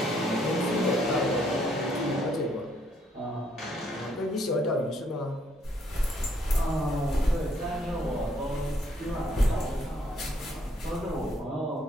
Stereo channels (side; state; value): both; normal; correlation 0.69